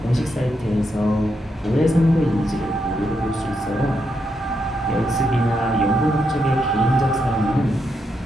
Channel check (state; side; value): normal; both; correlation 0.81